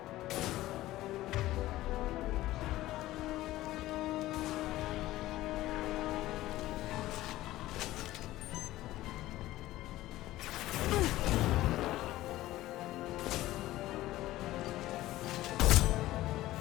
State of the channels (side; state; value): right; quieter; 16.1 dB